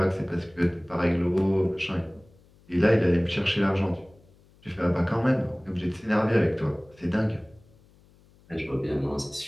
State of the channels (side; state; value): left; noise; hum, 29 dB below the sound